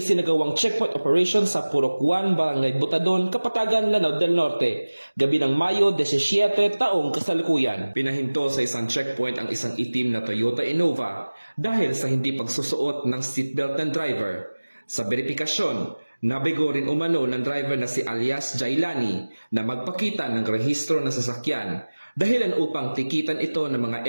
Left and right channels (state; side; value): inverted; both; correlation -1.00